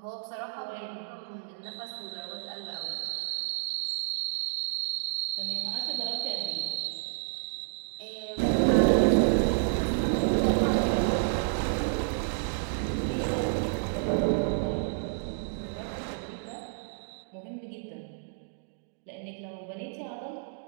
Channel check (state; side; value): silent; left; digital silence